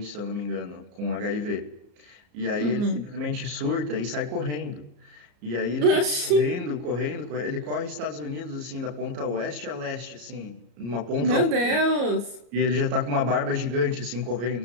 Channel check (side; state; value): left; late; 34 ms